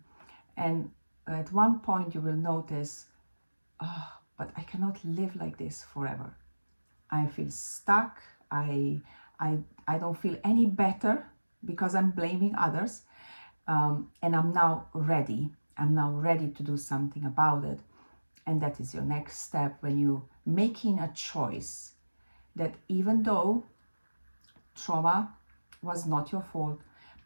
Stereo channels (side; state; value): both; inverted; correlation -1.00